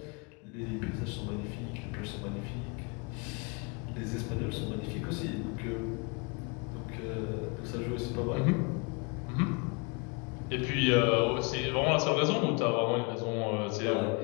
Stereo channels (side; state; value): right; quieter; 30.3 dB